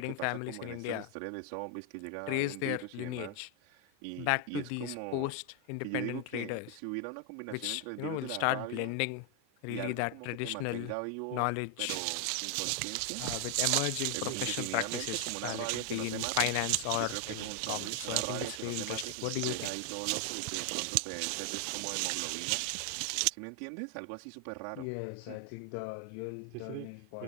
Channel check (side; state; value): both; different; correlation 0.01